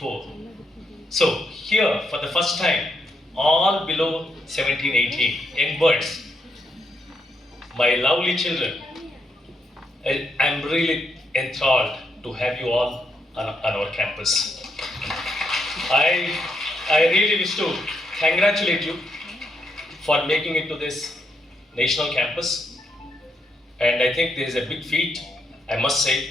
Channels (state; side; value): normal; both; correlation 0.79